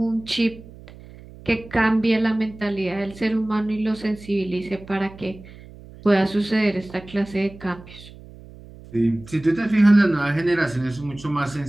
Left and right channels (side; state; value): right; noise; hum, 19 dB below the sound